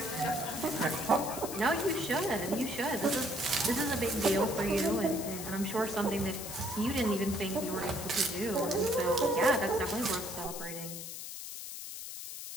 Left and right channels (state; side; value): noise; left; hiss, 8 dB below the sound